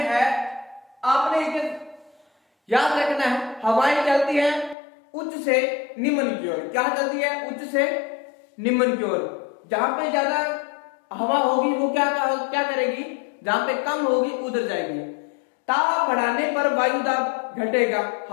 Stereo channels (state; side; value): drops out; right; at 4.8 s